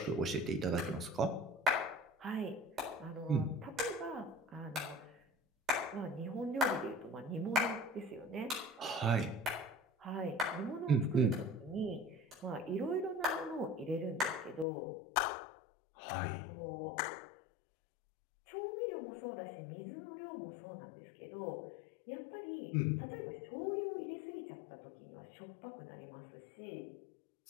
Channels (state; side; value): drops out; right; at 14.7 s